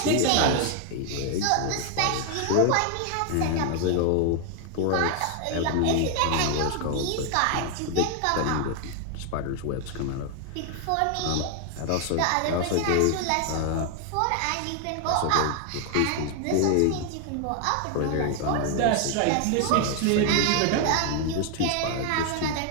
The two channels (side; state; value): both; different; correlation 0.00